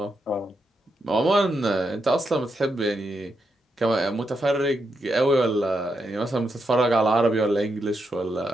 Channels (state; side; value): normal; both; correlation 0.83